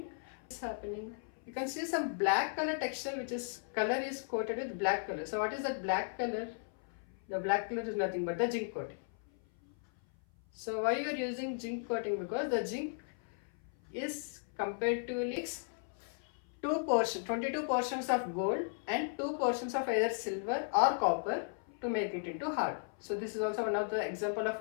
is happening. You can see some black color texture, which is color is coated with black color. So what is that black color? The black color is nothing but the zinc coating. So why you are using zinc coating? Because the zinc is comparatively 22 portions of gold and 2 portions of either silver or copper to make it into hard. So this is also one of the example of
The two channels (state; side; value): silent; right; 54 dB below the other